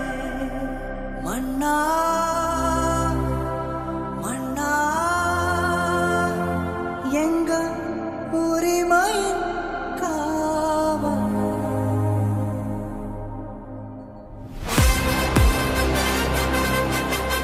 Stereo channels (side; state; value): both; identical; correlation 1.00